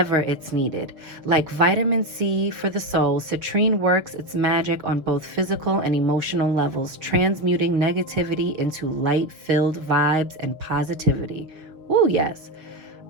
it's needed. Like vitamin C for the soul, citrine works its magic on both physical and emotional levels, transmuting negativity into light-filled vibes and positivity. Ooh, yes.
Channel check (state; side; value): late; left; 6.7 ms